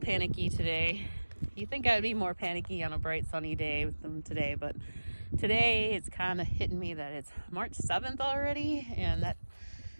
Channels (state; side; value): inverted; both; correlation -1.00